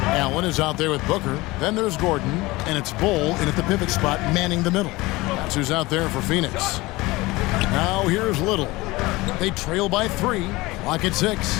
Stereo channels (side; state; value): right; quieter; 21.1 dB